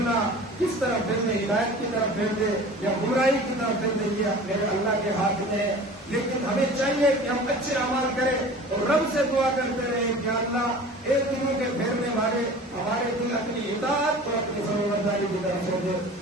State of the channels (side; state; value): both; normal; correlation 0.41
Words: کس طرح پھر دے، ہدایت کی طرف پھیر دے یا برائی کی طرف پھیر دے، یہ میرے اللہ کے ہاتھ میں ہے۔ لیکن ہمیں چاہیے کہ ہم اچھے اعمال کریں اور رب سے دعا کرتے رہیں کہ اللہ ایک دلوں کے پھیرنے والے ہمارے دل اپنی اطاعت اور اپنی فرمانبرداری کی طرف سے دے۔